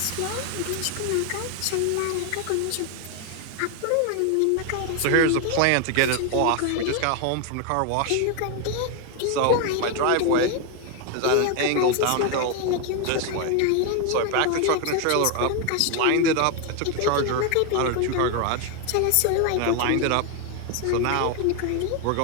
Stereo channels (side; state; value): both; different; correlation 0.01